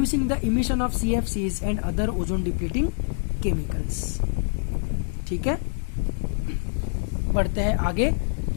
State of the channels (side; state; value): right; silent; digital silence